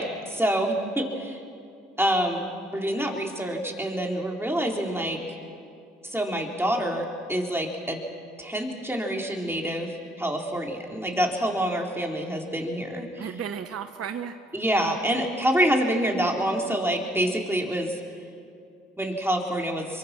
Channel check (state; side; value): normal; both; correlation 0.68